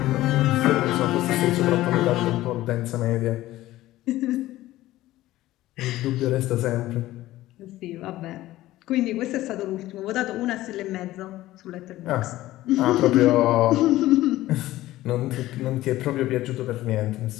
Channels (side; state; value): right; quieter; 16.0 dB